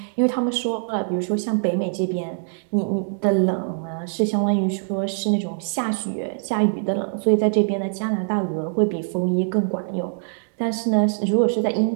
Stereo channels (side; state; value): left; silent; digital silence